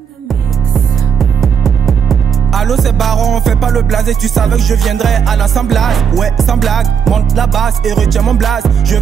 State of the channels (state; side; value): quieter; left; 7.1 dB